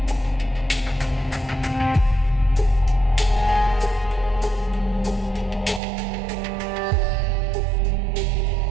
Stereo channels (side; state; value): left; drops out; at 5.8 s